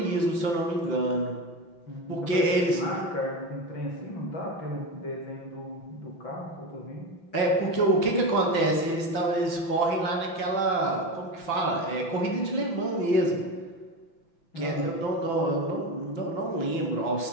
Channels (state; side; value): late; right; 5.9 ms